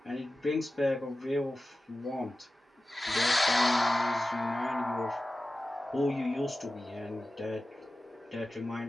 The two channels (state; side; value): normal; both; correlation 0.95